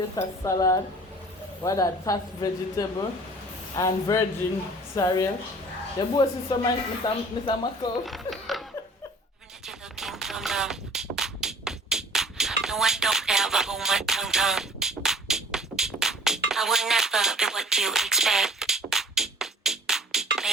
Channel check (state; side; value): normal; both; correlation 0.49